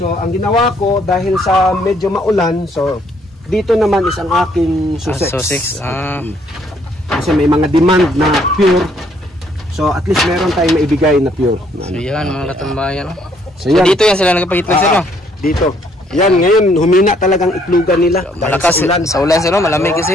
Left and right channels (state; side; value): normal; both; correlation 0.67